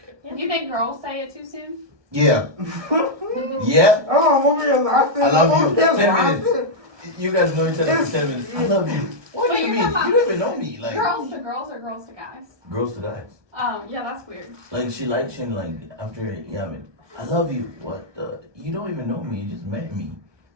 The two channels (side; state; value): left; late; 1.2 ms